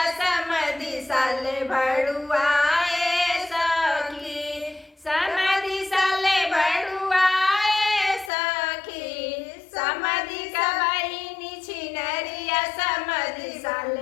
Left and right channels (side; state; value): right; drops out; at 8.3 s